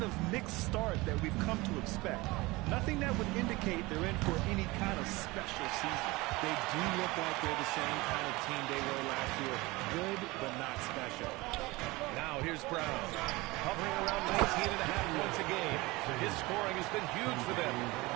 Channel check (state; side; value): quieter; left; 22.2 dB